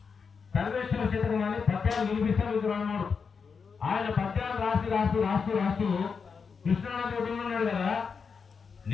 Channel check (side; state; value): right; quieter; 5.7 dB